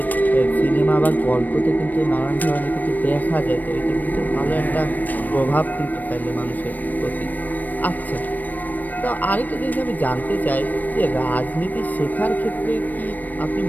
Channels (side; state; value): right; late; 0.085 ms